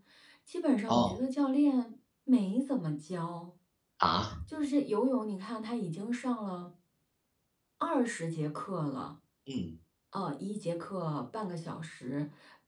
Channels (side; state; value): both; identical; correlation 1.00